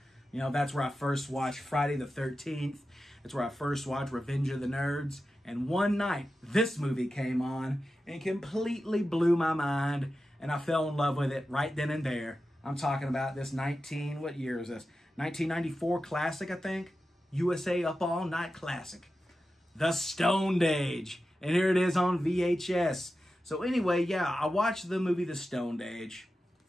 That's where I first watched Friday the 13th. That's where I first watched Revenge of the Nerds. And one night, this movie came on and completely blew my mind. And I fell in love with it right then and there. I'm talking about this what year is this? 1994 classic, I think. USA Up All Night classic. The Stoned Age. And here it is on VHS. So anyway, yeah, I watched the movie The Stoned Age.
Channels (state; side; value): normal; both; correlation 0.92